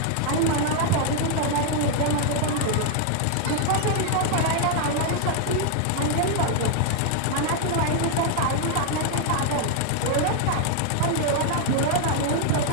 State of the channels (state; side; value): different; both; correlation 0.00